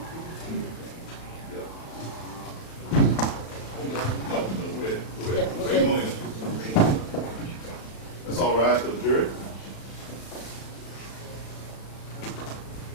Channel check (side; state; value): right; late; 36 ms